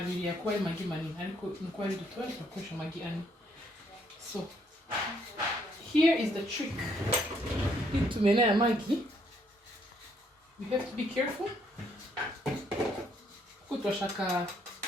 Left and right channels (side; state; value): both; normal; correlation 0.69